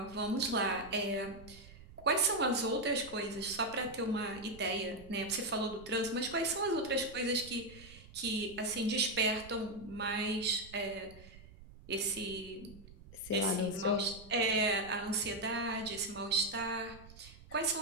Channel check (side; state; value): right; noise; rumble, 19 dB below the sound